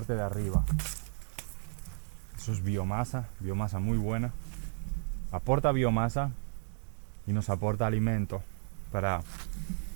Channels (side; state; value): left; silent; digital silence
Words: de arriba, eso es biomasa muy buena, aporta biomasa y nos aporta alimento